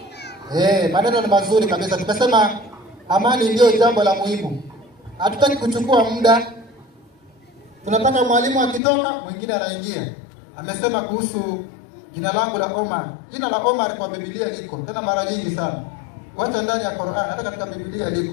Maneno ni mazuri kabisa. Tumesema amani ndio jambo la muhimu. Hatutaki kuchukua muda. Tunataka mwalimu akitoka mwingine anaingia. Amesema kuhusu jina langu la Omar. Jina la Omar kwa Biblia liko tena mara nyingi sana. Wacha ndani ya Qur'an, hata katika Biblia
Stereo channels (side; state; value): right; drops out; at 8.8 s